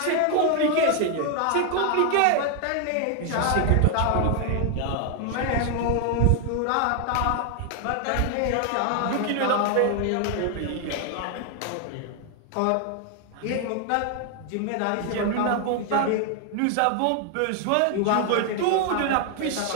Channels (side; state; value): both; different; correlation 0.00